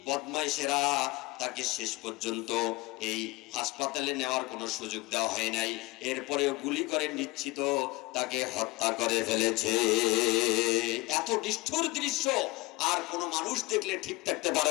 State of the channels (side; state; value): right; quieter; 22.5 dB